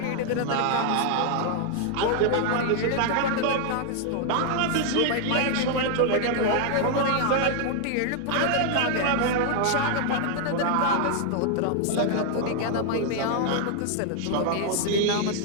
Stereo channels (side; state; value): both; different; correlation 0.00